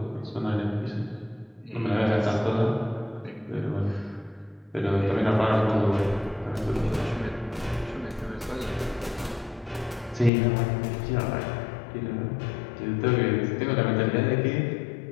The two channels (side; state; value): right; drops out; at 10.3 s